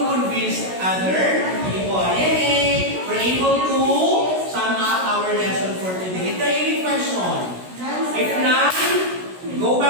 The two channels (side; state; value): left; late; 16 ms